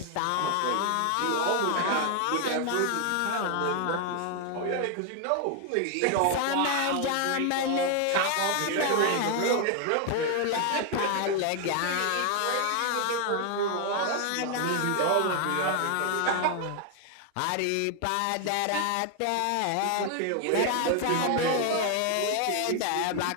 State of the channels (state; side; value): different; both; correlation 0.00